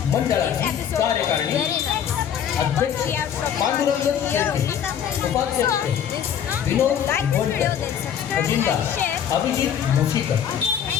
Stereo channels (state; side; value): quieter; right; 8.9 dB